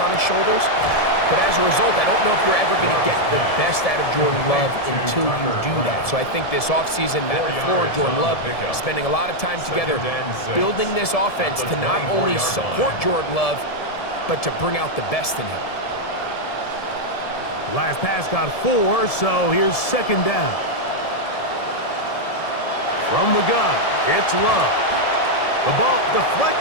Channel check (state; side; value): late; right; 1.7 ms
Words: his shoulders. But as a result, I don't know if you're ever going to get the best out of Jordan Love until you do that. So I think this offseason, Matt LaFleur and Jordan Love spending a lot of time together building this offense to not only support Jordan Love, but to bring out the best in him. Last pass got 4, so here's second down. From the gun, it's Love. The ball